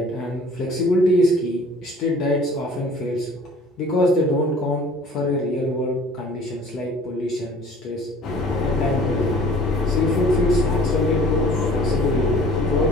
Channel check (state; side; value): normal; both; correlation 0.50